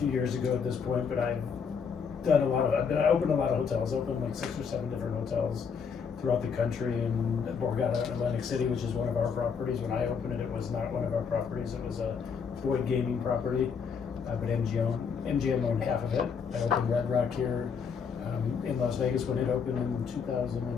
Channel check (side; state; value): right; quieter; 6.2 dB